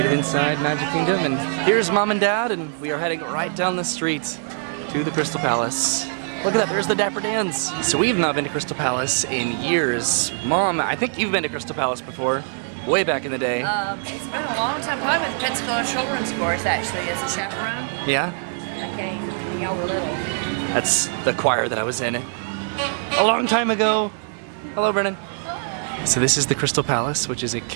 it inside Magic Kingdom, and here's mom and dad, and we are heading right down the street to the Crystal Palace. Look at that, there's the Dapper Dans. So we've not been to Crystal Palace in years. Mom, I think you've been to Crystal Palace before. Way back in the day. It's been a long time. I went to Pensacola Children's Course actually as a chaperone. Yeah? I came when y'all were little. That's the choir that I was in a long time ago. Hello, Brennan. So this is the Crystal Palace, which is a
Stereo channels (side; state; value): left; silent; digital silence